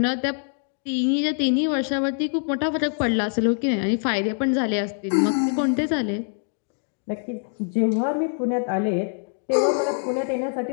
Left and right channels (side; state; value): right; silent; 62 dB below the other